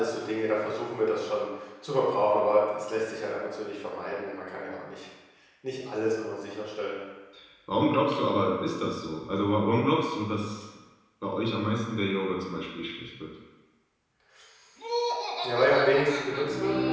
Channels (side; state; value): both; identical; correlation 1.00